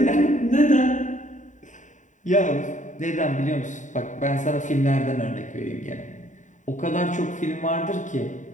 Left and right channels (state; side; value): late; right; 0.36 ms